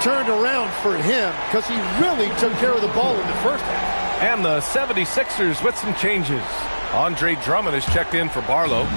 turned around for him because he really took care of the ball in the first half. And the 76ers with some changes. Andre Drummond is checked in for Barlow.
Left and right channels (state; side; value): inverted; both; correlation -1.00